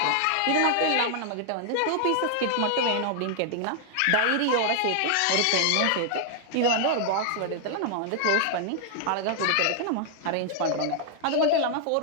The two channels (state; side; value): different; both; correlation -0.01